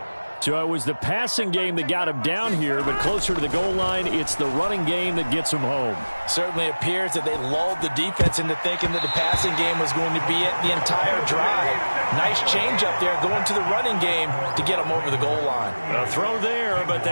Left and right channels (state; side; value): inverted; both; correlation -1.00